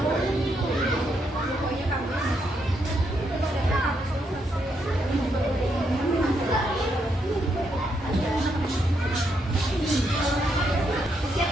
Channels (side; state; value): both; normal; correlation 0.78